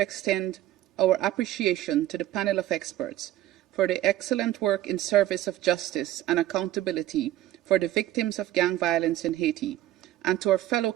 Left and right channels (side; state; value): left; quieter; 14.1 dB